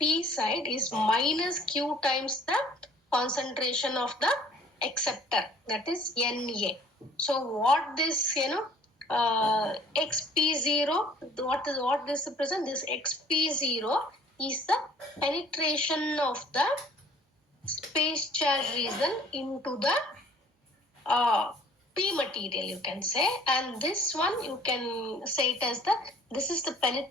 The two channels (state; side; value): normal; both; correlation 0.55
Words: side is minus Q times the concentration of the acceptor, that is Na. So what this XP0, what this represent? This XP0 is the penetration of the space charge region into the P material, you can say. And this one you can say it as this is the